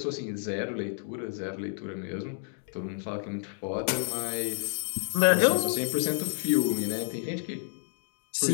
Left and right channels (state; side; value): silent; right; digital silence